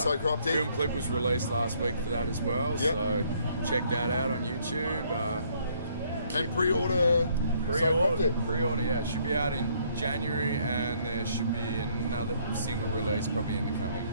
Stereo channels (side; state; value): both; inverted; correlation -0.66